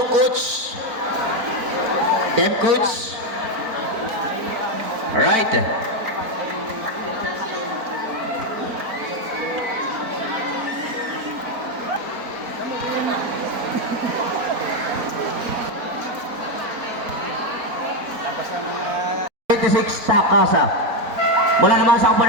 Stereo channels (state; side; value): late; left; 4.3 ms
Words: coach. Team coach. Alright. Takasa. Mula naman sa